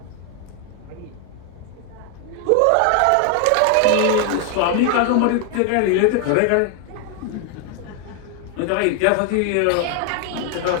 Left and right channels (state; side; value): different; both; correlation 0.01